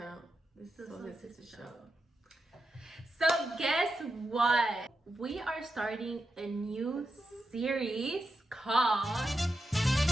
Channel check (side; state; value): both; normal; correlation 0.88